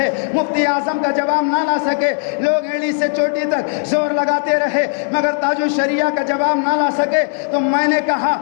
مفتی اعظم کا جواب نہ لا سکے، لوگ ایلی سے چوٹی تک زور لگاتے رہے مگر تاج الشریعہ کا جواب نہ لا سکے۔ تو میں نے کہا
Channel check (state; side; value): silent; right; 68 dB below the other